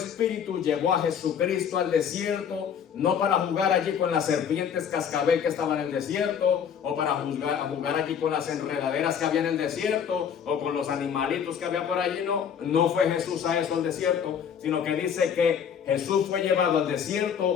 llevó a Jesucristo al desierto, no para jugar allí con las serpientes cascabel que estaban en el desierto, o para jugar allí con las enredaderas que había en el desierto, o con los animalitos que había por allí. No fue Jesús a eso al desierto, sino que dice que Jesús fue llevado al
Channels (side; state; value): right; quieter; 7.8 dB